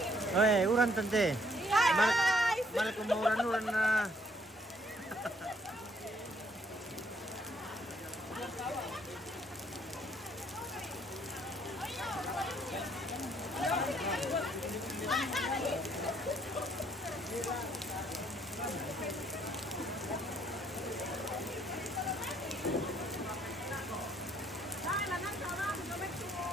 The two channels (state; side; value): normal; both; correlation 0.66